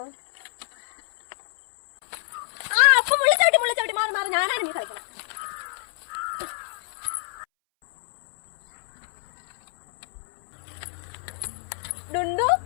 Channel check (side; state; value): right; silent; 61 dB below the other